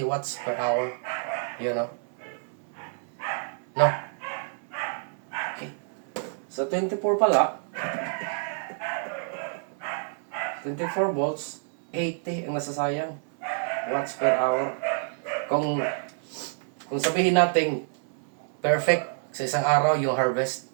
watts per hour. You know? No? Sa 24 pala, 24 volts, 80 ang nasasayang watts per hour. Kung sabihin natin perfect sa isang araw yung harvest,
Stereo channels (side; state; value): left; silent; digital silence